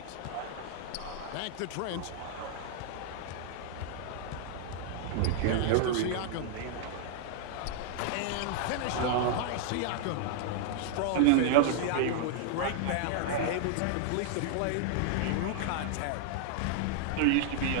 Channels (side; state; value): both; different; correlation -0.01